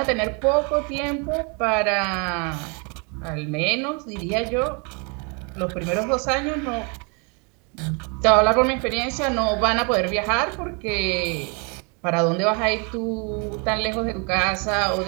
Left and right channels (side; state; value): left; quieter; 34.3 dB